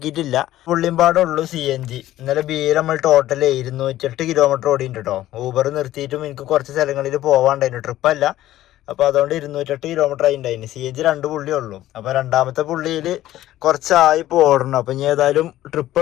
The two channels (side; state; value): right; quieter; 14.2 dB